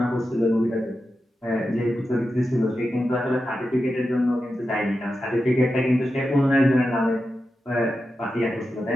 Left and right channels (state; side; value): normal; both; correlation 0.90